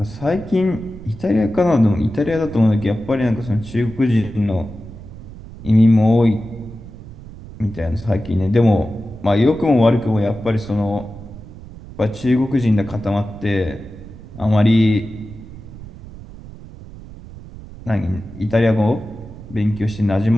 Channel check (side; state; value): right; noise; rumble, 16 dB below the sound